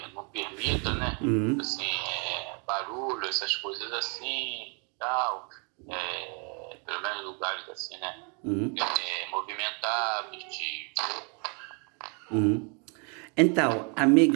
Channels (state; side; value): quieter; left; 35.5 dB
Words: não permita, né? Assim, barulho, essas coisas assim, tal, pelo menos lugares assim, né? Movimentados, Então,